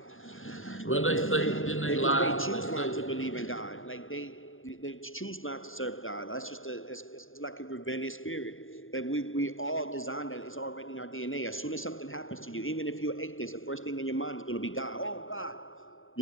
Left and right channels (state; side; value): late; right; 0.59 ms